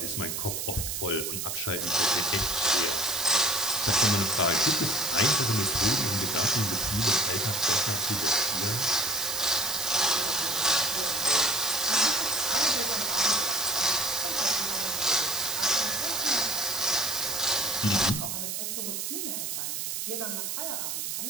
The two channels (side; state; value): right; noise; hiss, 3 dB below the sound